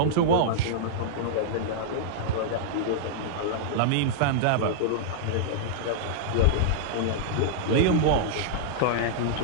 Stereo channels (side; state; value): both; different; correlation -0.01